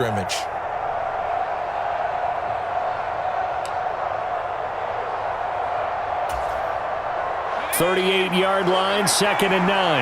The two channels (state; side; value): identical; both; correlation 1.00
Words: .38-yard line, 2nd and